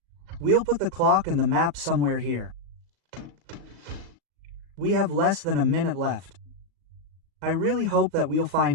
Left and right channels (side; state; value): left; late; 37 ms